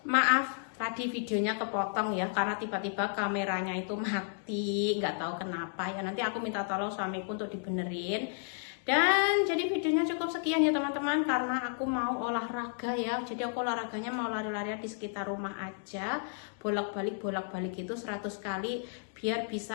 Maaf tadi videonya kepotong ya, karena tiba-tiba kameranya itu mati, nggak tahu kenapa ya. Nanti aku minta tolong suamiku untuk dibenerin. Dan jadi videonya cukup sekian ya teman-teman, karena aku mau olahraga ya. Jadi aku olahraganya mau lari-lari di sekitar rumah aja, bolak-balik itu 100 kali biar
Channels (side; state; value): right; silent; digital silence